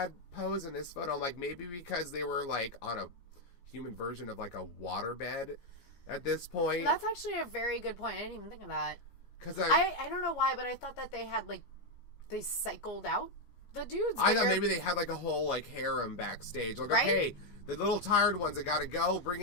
pose in this photo. I'm like, maybe because they were like on a human version of like a waterbed at this point. That's actually a very good point. I didn't even think of that. Because I don't know why, but I thought that they had like, they cycled out the dudes. I thought maybe they had like a whole like harem backstage. Like, okay, the little tired ones that gotta go, bring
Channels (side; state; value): right; late; 15 ms